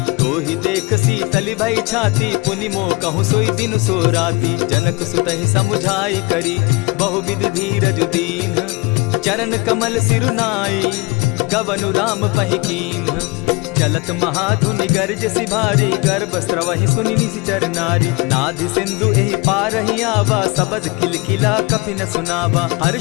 तो ही देख शीतली भई छाती, पुनि मो कहूँ सोई दिन सो राती। जनक सुतहि समुझाई करी, बहुविध धीरज दीन। चरण कमल सिरुनाई, गवनु राम पहि कीन। चलत महाधुनि गर्ज सिभारी, गर्भ स्रवहि सुनि निशिचर नारी। नाधि सिंधु एहि पारहि आवा, सबद किलकिला कपि न सुनावा।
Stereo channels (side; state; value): right; quieter; 26.1 dB